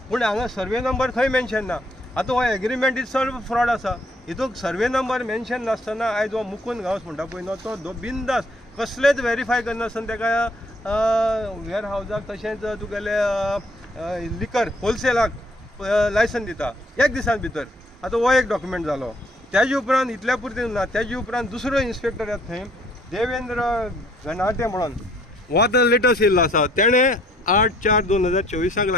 पूण हांगा सर्वे नंबर खंय मेन्शन ना। आतां हो एग्रीमेंट इज सॉल्व फ्रॉड आसा। हितून सर्वे नंबर मेन्शन नासतना आयज हो मुकुंद गांवस म्हणटा पळय न्हू तो बिंदास कसलेच व्हेरीफाय करनासतना ताका वेअर हावजाक तशेंच तुगेले लिकर होलसेलाक लायसन दिता एक दिसान भितर। आतां हो एक डॉक्युमेंट जालो। तेजे उपरांत इतल्या पुरतें ना, तेजे उपरांत दुसरो इन्स्पेक्टर येता थंय देवेंद्र घनाटे म्हणून, हो आतां लेटस्ट येयल्लो आसा, तेणें 8/4/2024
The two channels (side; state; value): both; normal; correlation 0.63